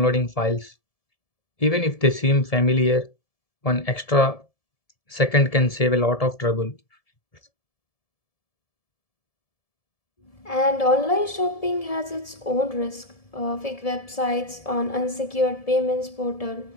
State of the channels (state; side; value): late; right; 1.7 ms